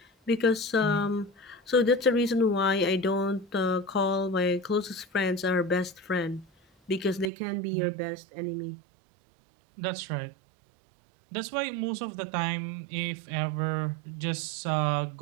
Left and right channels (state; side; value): drops out; left; at 7.3 s